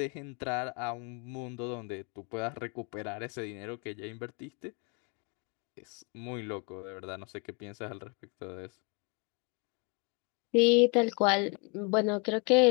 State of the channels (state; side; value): quieter; right; 33.0 dB